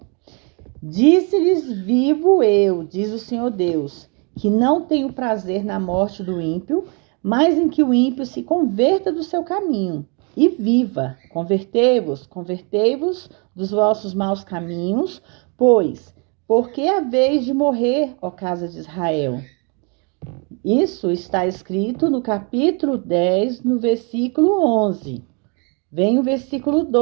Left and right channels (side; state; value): left; quieter; 34.5 dB